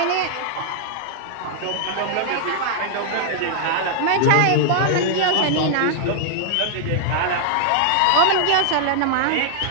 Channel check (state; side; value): different; both; correlation -0.01